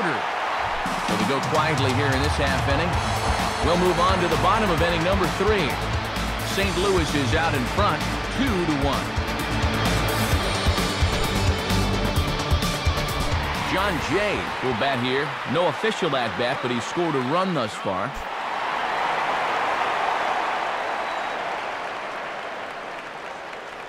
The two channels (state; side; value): identical; both; correlation 1.00